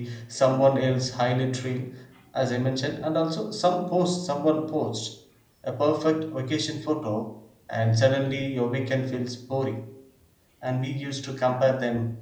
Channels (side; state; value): both; identical; correlation 1.00